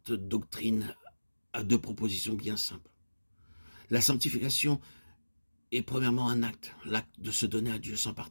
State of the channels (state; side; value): inverted; both; correlation -1.00